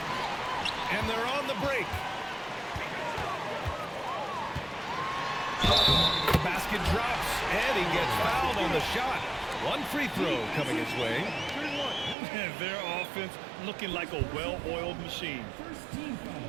And they're on the break. Basket basket drops, and he gets fouled on the shot. One free throw coming his way. And their offense looking like a well-oiled machine.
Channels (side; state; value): left; drops out; at 12.2 s